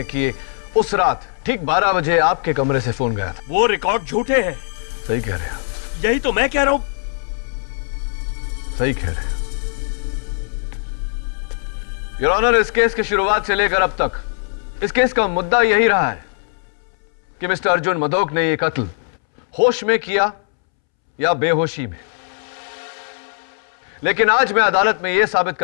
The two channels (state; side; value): silent; right; 66 dB below the other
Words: कि उस रात ठीक 12 बजे आपके कमरे से फोन गया था। वो रिकॉर्ड झूठे हैं। सही कह रहे हैं। यही तो मैं कह रहा हूं। सही कह रहे हैं। योर ऑनर, इस केस की शुरुआत से लेकर अब तक इस केस का मुद्दा यही रहा है कि मिस्टर अर्जुन मधोक ने यह कत्ल होश में किया या बेहोशी में। लेकिन आज मैं अदालत में यह साबित